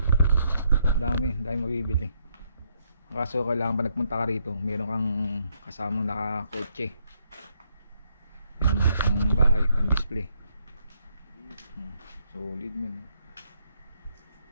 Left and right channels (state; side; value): inverted; both; correlation -0.74